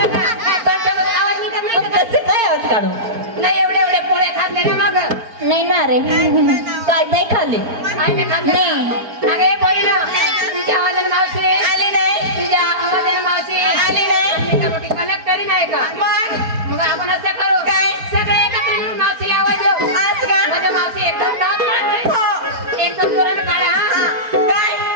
का काय कंटाळून आवाज निघत नाही का कसे काय आवाज काढू नाही एवढे पोळे खाल्ले ना मग नाही ना रे काय नाही खाल्ले आई मी खाल्ले नाही. अगे बोली ना तुझ्या आवाजाने मावशी आली नाही. तुझ्या आवाजाने मावशी आली नाही. मी का मोठी कलेक्टरी नाही का मग आपण असं करू काय? सगळे एकत्र मिळून मावशीला आवाज देऊ असं का? माझ्या मावशी एकदम दात काढते. हो. एकदम जोराने काढा हा काय?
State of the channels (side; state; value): left; late; 4.4 ms